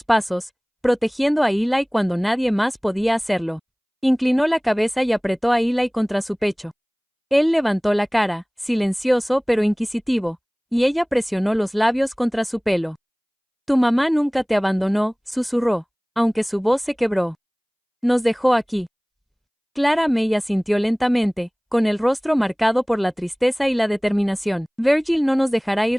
pasos, protegiendo a Eli cuando nadie más podía hacerlo. Inclinó la cabeza y apretó a Eli contra su pecho. Él levantó la cara, silencioso pero inquisitivo, y ella presionó los labios contra su pelo. Tu mamá nunca te abandonó, susurró, aunque su voz se quebró. Nos dejó aquí. Clara May asintió lentamente, con el rostro marcado por la tristeza y la determinación. Virgil no nos dejará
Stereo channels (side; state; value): both; identical; correlation 1.00